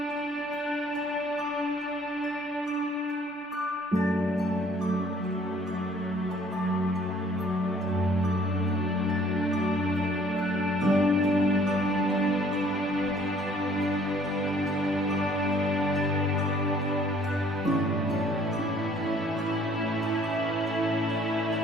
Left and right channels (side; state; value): both; normal; correlation 0.58